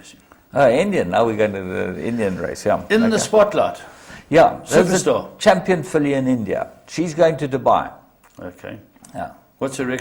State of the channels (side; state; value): both; identical; correlation 1.00